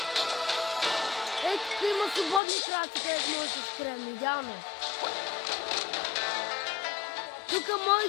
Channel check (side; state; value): right; drops out; at 2.4 s